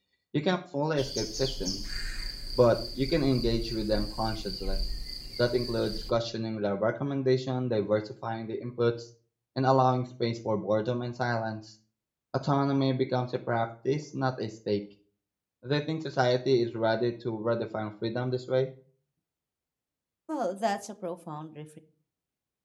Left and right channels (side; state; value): both; identical; correlation 1.00